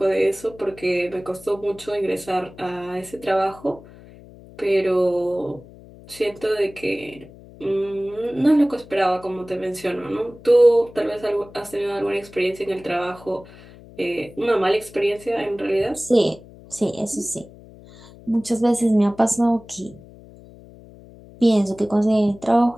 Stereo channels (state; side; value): noise; left; hum, 21 dB below the sound